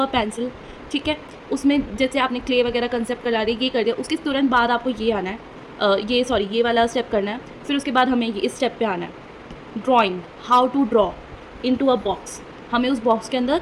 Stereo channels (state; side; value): identical; both; correlation 1.00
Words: पेंसिल। ठीक है, उसमें जैसे आपने क्ले वगैरह कंसेप्ट करा दिया, ये कर दिया, उसके तुरंत बाद आपको ये आना है, ये वाला स्टेप करना है। फिर उसके बाद हमें ये इस स्टेप पे आना है, drawing, how to draw into a box. हमें उस बॉक्स के अंदर